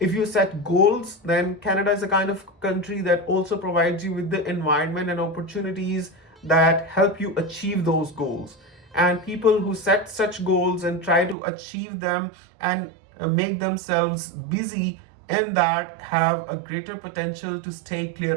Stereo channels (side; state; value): left; drops out; at 11.4 s